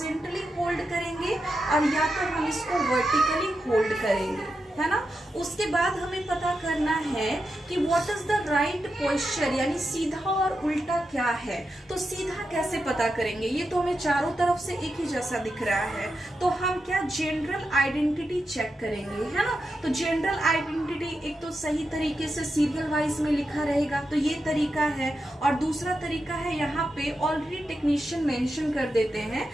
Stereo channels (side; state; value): both; normal; correlation 0.88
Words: होल्ड करेंगे और या तो हम इसको वर्टिकली होल्ड करेंगे, है ना। उसके बाद हमें पता करना है कि what is the right posture, यानी सीधा और उल्टा क्या है। तो सीधा कैसे पता करेंगे? ये तो हमें चारों तरफ से एक ही जैसा दिख रहा है, तो हम क्या जनरल आइडेंटिटी चेक करेंगे, है ना। तो जनरल आइडेंटिटी एक तो सही तरीके से सीरियल वाइज में लिखा रहेगा, तो ये तरीका है। और दूसरा तरीका है, यहाँ पे ऑलरेडी टेक्नीशियन मेंशन कर देते हैं